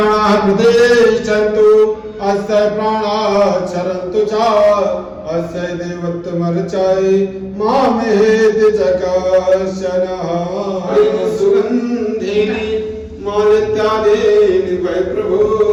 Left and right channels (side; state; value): both; identical; correlation 1.00